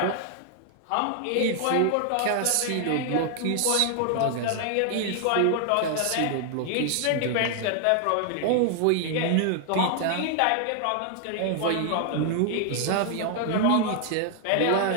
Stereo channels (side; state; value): both; different; correlation 0.00